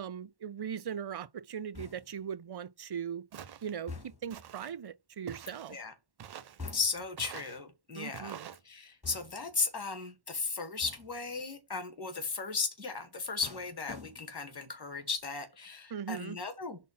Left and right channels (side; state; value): left; late; 1.1 ms